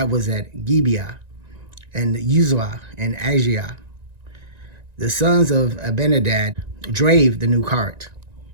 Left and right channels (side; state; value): left; late; 1.9 ms